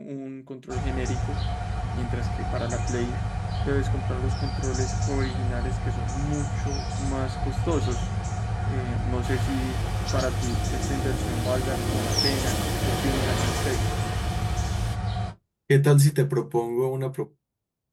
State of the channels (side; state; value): both; identical; correlation 1.00